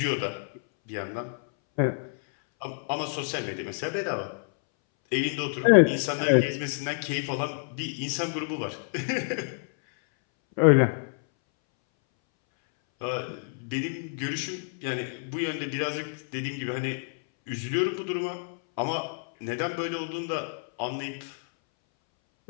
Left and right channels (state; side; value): silent; right; 59 dB below the other